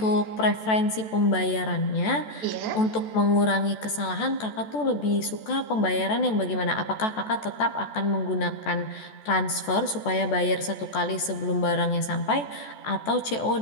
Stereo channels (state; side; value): late; right; 14 ms